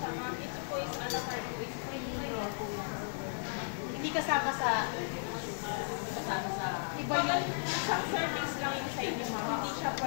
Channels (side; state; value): right; silent; 54 dB below the other